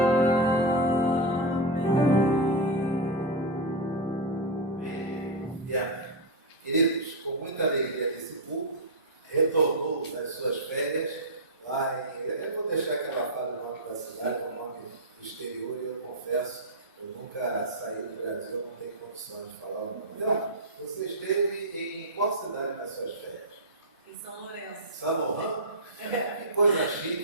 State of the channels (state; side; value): normal; both; correlation -0.01